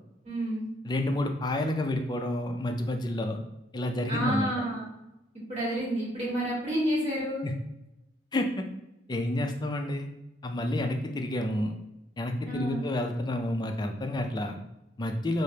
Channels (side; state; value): both; normal; correlation 0.71